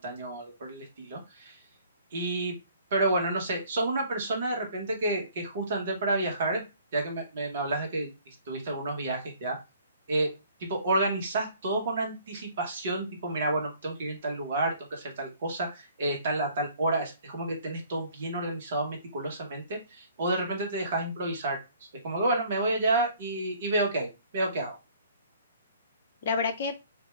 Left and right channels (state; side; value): inverted; both; correlation -0.57